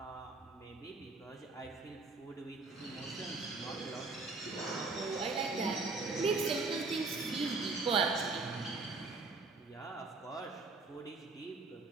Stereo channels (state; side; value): quieter; left; 3.7 dB